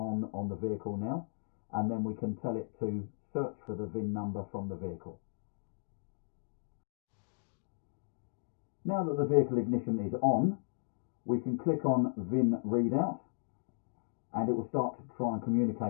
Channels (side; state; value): right; silent; digital silence